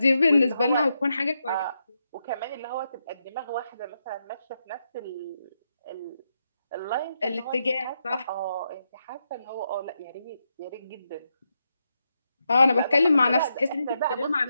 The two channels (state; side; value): inverted; both; correlation -0.83